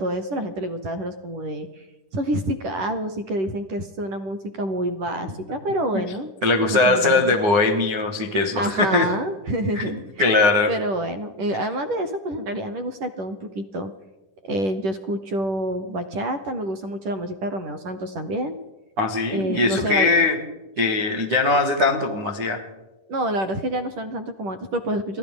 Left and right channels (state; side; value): late; left; 9.8 ms